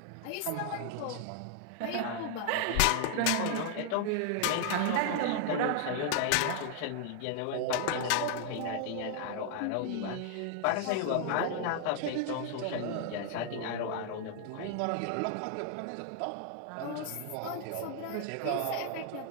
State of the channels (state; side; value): different; both; correlation 0.00